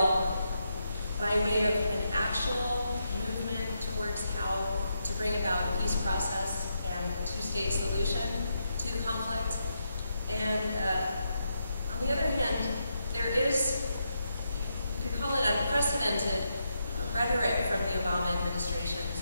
by way of an actual movement towards how to bring about a peace process and a 2-state solution to the conflict. And on the other hand, there is, you could call it unprecedented rhetoric from the Obama administration,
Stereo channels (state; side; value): inverted; both; correlation -0.82